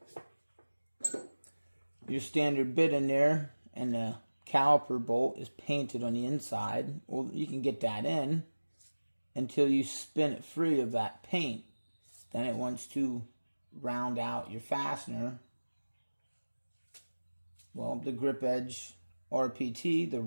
your standard bit in there and the caliper bolt is painted on the inside. Well, you can get that in until you spin it free of that paint. Then it wants to round out your fastener. Well, the Grip Edge RPT, the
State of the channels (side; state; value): both; inverted; correlation -1.00